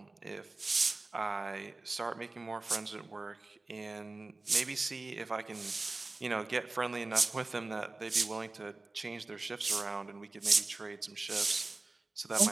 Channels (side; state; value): left; quieter; 3.3 dB